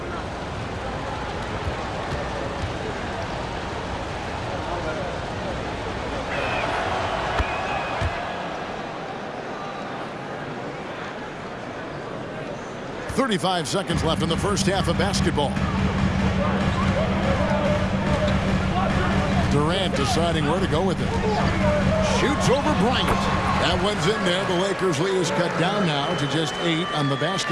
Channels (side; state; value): both; identical; correlation 1.00